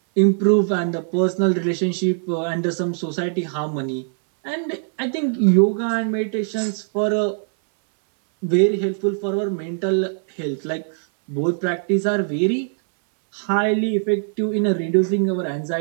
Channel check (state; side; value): silent; left; 65 dB below the other